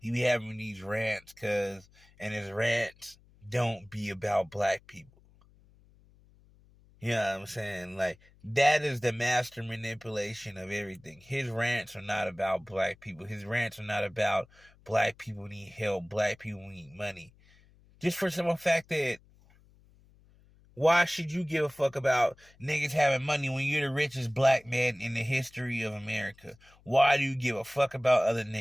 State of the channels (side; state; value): left; noise; hum, 28 dB below the sound